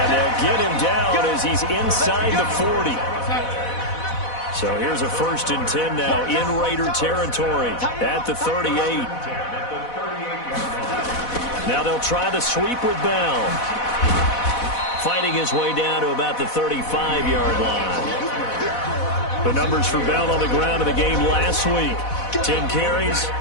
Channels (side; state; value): right; late; 4.1 ms